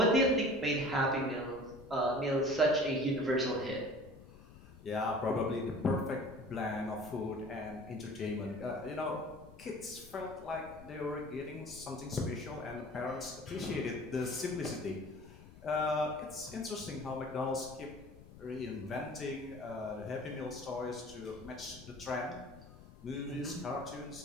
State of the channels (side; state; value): left; noise; rumble, 18 dB below the sound